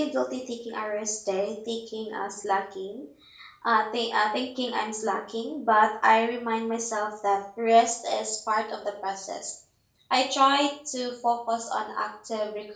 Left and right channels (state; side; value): identical; both; correlation 1.00